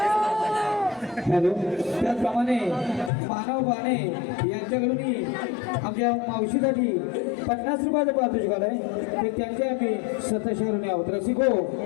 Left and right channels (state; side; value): drops out; right; at 3.1 s